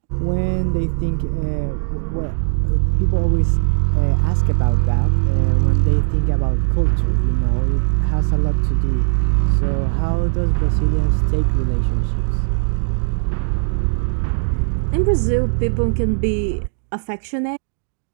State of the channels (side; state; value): left; silent; digital silence